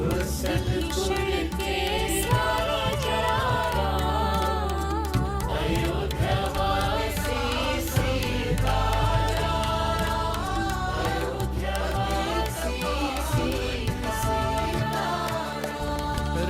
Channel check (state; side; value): identical; both; correlation 1.00